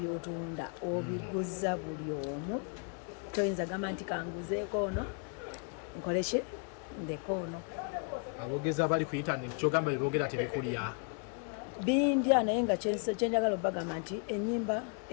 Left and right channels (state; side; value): quieter; right; 38.1 dB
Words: obiguza buli omu. Toyinza gamba nti kanguzeeko ono nkoleki ndeko ono. Abogeza abali ku internet kyogamba bibogera tebikulya bindya naye nga kyenjagala obagamba nti